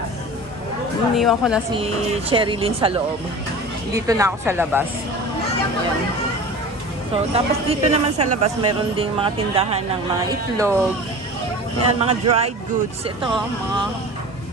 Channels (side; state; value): both; normal; correlation 0.37